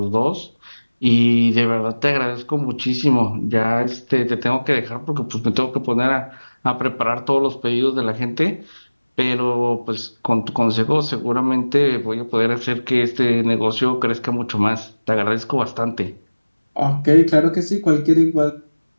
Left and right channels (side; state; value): both; inverted; correlation -1.00